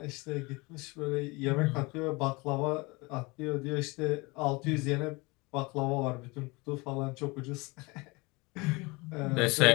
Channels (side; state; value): right; quieter; 25.4 dB